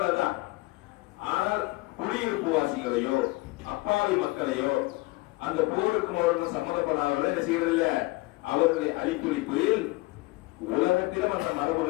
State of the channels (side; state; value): right; quieter; 22.0 dB